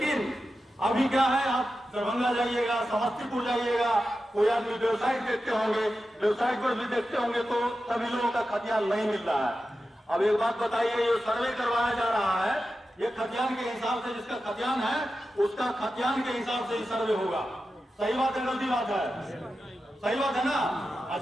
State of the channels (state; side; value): normal; both; correlation 0.92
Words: अभी क्या है, आप दरभंगा जाइएगा, समस्तीपुर जाइएगा, कोई आदमी वेबसाइट देखते होंगे, वेबसाइट पर भी देखते होंगे तो सभी लोगों का खतियान नहीं मिल रहा है। अब एक बात बताइए, ये सर्वे करवाया जा रहा है, ये खतियान के हिसाब से, जिसका खतियान है उसका खतियान के हिसाब से ही सर्वे होगा। सही बात है, गलती बात है? सही बात है ना। और